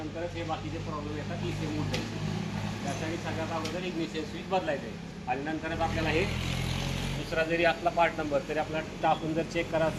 हे बाकीचे प्रॉब्लेम येतात ECM उठायचे. त्यासाठी सगळ्यात अगोदर इग्निशन स्विच बदलायचं आहे. आणि नंतरच आपल्याला हे दुसरा जरी असला पार्ट नंबर तरी आपल्याला टाकून जर चेक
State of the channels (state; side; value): identical; both; correlation 1.00